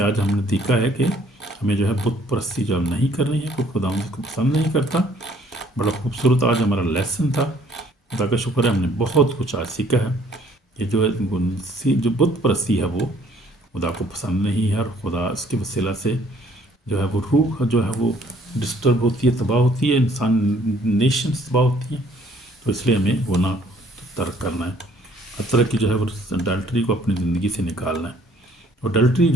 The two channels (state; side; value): normal; both; correlation 0.60